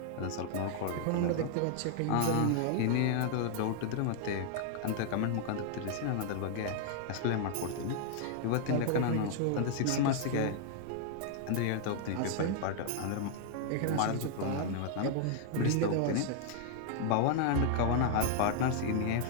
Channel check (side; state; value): both; different; correlation 0.00